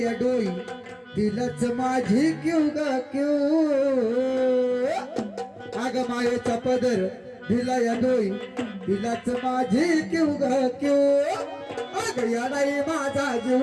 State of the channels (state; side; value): identical; both; correlation 1.00